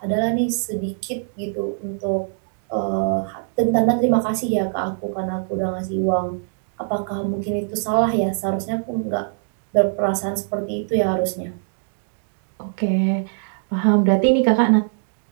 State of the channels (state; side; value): silent; left; digital silence